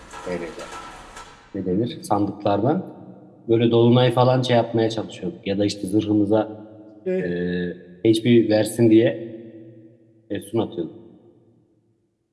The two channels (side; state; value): both; identical; correlation 1.00